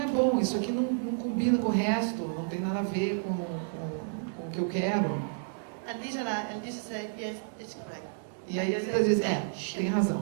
bom, isso aqui não combina com o resto, não tem nada a ver com o que eu quero. And Lisa said, yes, it's correct. E aí às vezes ela diz, tem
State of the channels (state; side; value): silent; left; digital silence